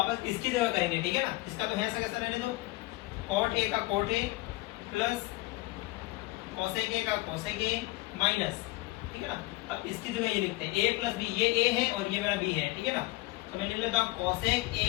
इसकी जगह करेंगे, ठीक है ना। इसका तो है ऐसा कैसा रहने दो, cot a का cot a plus cosec a का cosec a माइनस, ठीक है ना। अब इसकी जगह ये लिखते हैं a प्लस b, ये a है और ये मेरा b है, ठीक है ना। तो मैं लिख लेता हूँ cosec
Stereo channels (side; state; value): right; quieter; 20.7 dB